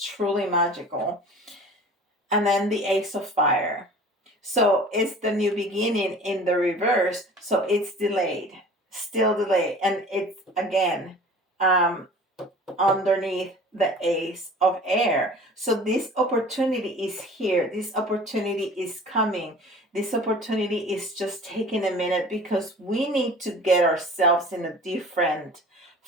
truly magical. And then the ace of fire. So it's the new beginning in the reverse. So it's delayed, still delayed. And it's again um, underneath the ace of air. So this opportunity is here. This opportunity is coming. This opportunity is just taking a minute because we need to get ourselves in a different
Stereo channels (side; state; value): both; normal; correlation 0.43